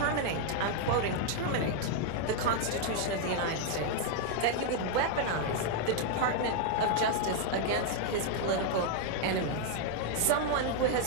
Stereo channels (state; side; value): different; both; correlation 0.00